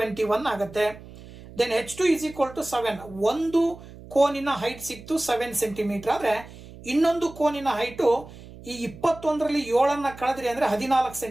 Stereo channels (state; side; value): noise; right; hum, 18 dB below the sound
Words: ಆಗುತ್ತೆ. Then H2 is equal to 7. ಒಂದು ಕೋನಿನ ಹೈಟ್ ಸಿಕ್ತು 7 ಸೆಂಟಿಮೀಟರ್. ಆದ್ರೆ ಇನ್ನೊಂದು ಕೋನಿನ ಹೈಟು ಈ 21ರಲ್ಲಿ 7 ಕಳೆದ್ರಿ ಅಂದ್ರೆ 14